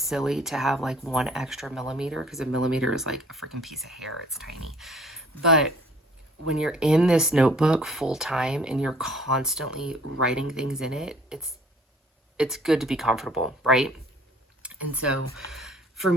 to have like 1 extra millimeter because a millimeter is like a freaking piece of hair. It's tiny. But when you're in this notebook full time and you're constantly writing things in it, it's good to be comfortable, right? And so for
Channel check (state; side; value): normal; both; correlation 0.55